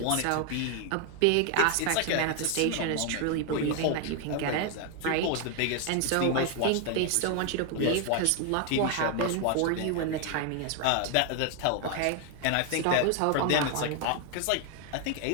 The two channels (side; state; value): both; different; correlation 0.01